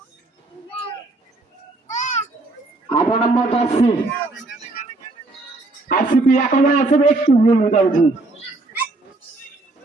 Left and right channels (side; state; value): left; quieter; 3.1 dB